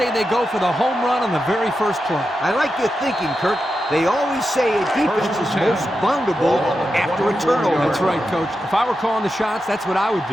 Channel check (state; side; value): normal; both; correlation 0.89